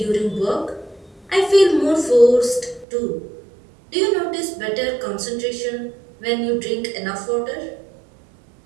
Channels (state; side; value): drops out; left; at 2.9 s